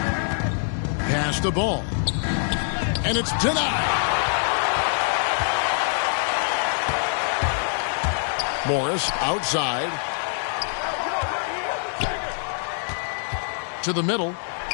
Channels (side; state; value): right; silent; 62 dB below the other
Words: Pass the ball. And it's denied. Morris outside. To the middle.